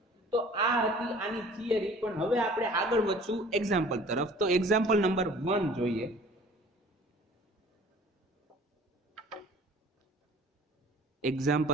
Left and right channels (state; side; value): normal; both; correlation 0.49